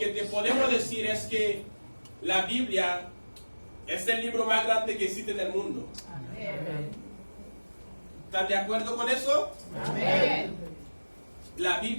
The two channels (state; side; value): inverted; both; correlation -1.00